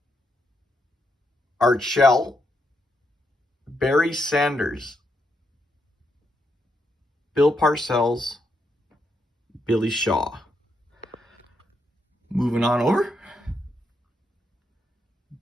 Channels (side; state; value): both; normal; correlation 0.80